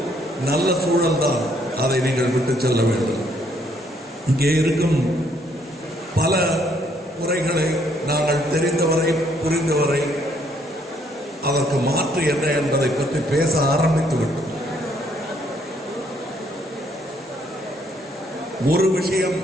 நல்ல சூழல் தான், அதை நீங்கள் விட்டு செல்ல வேண்டும். இங்கே இருக்கும் பல குறைகளை நாங்கள் தெரிந்தவரை புரிந்தவரை அதற்கு மாற்று என்ன என்பதை பற்றி பேச ஆரம்பித்து விட்டோம். ஒரு விஷயம்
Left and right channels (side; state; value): both; normal; correlation 0.68